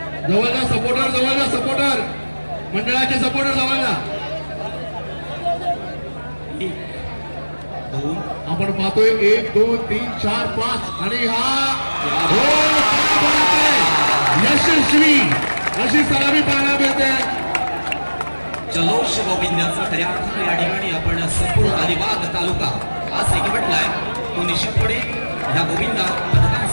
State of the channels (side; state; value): both; inverted; correlation -1.00